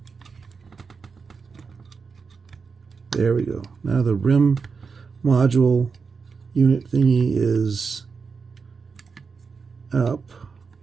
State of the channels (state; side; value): quieter; left; 5.2 dB